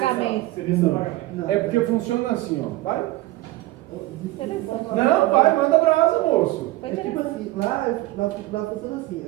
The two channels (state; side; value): quieter; left; 17.8 dB